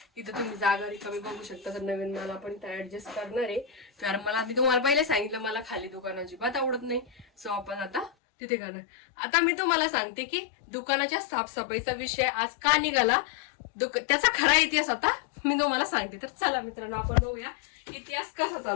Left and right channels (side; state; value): right; drops out; at 8.1 s